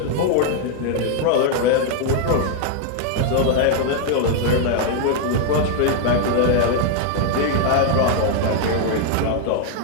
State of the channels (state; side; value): different; both; correlation 0.00